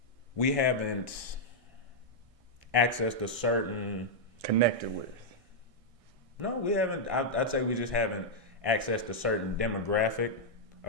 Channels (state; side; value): late; left; 1.6 ms